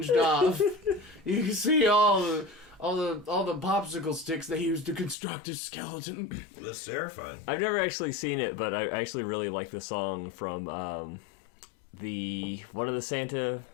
off. You can see all the popsicle sticks they used to construct his skeleton. That's terrifying. I've never actually seen it, but I actually really like the song from one of the Santa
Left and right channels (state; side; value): drops out; right; at 5.2 s